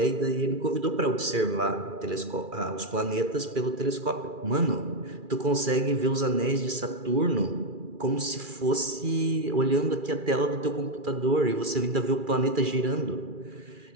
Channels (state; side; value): late; left; 2.4 ms